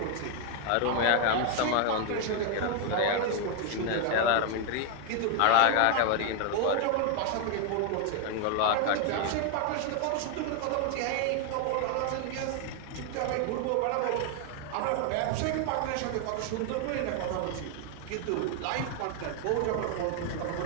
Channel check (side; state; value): both; different; correlation 0.00